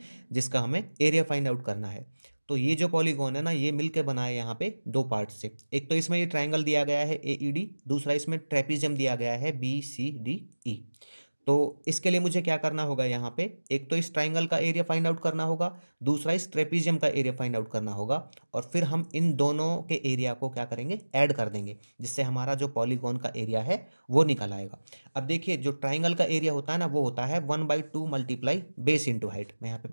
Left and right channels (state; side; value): inverted; both; correlation -1.00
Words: जिसका हमें एरिया फाइंड आउट करना है। तो ये जो पॉलीगॉन है ना, ये मिलके बना है यहाँ पे दो पार्ट से। एक तो इसमें ये ट्राइंगल दिया गया है AED, दूसरा इसमें ट्रेपीजियम दिया गया है BCDE। तो इसके लिए मुझे क्या करना होगा, यहाँ पे एक तो इस ट्राइंगल का एरिया फाइंड आउट करना होगा, दूसरा इस ट्रेपीजियम का एरिया फाइंड आउट करना होगा, और फिर हम इन दोनों के एरिया को क्या करेंगे, ऐड कर देंगे, जिससे हमारा जो पॉलीगॉन का एरिया है वो निकल आएगा। अब देखिए, जो ट्राइंगल का एरिया होता है ना, वो होता है 1/2 मल्टीप्लाई बेस इंटू हाइट। मैं यहाँ पे